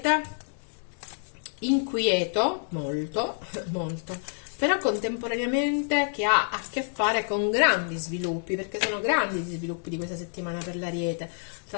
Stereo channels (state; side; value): silent; right; digital silence